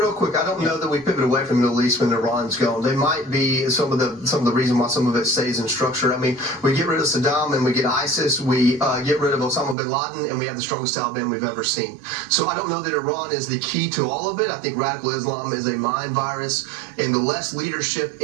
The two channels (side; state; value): left; drops out; at 9.8 s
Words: quick, I don't know that we pivot away from the Middle East when Iran's gone. They might be some of the reason why some of it stays in structure. I mean, we get rid of Saddam and we get ISIS, we get rid of Osama bin Laden, and we have the strongest Taliban we've ever seen. So I don't know that Iran is the key to all of it. I think radical Islam is a mind virus, and the less leadership